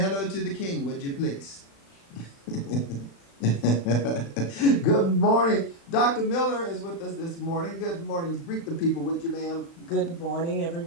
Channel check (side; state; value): right; late; 36 ms